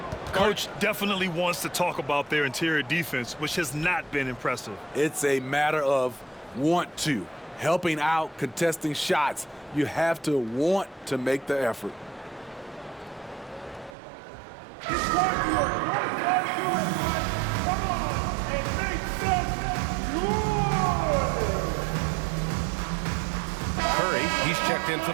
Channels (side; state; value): left; drops out; at 14.0 s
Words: Coach definitely wants to talk about their interior defense, which has not been impressive. It's a matter of want to. Helping out, contesting shots. You have to want to make the effort. He's checked in for